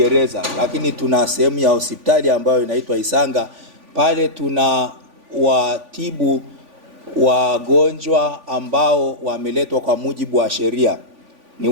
lakini tuna sehemu ya hospitali ambayo inaitwa Isanga. Pale tuna watibu wagonjwa ambao wameletwa kwa mujibu wa sheria. Ni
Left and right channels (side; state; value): left; late; 3.5 ms